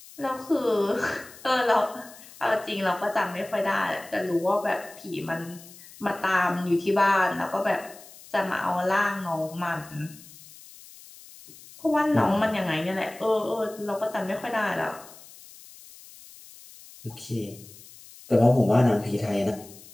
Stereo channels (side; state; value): left; noise; hiss, 20 dB below the sound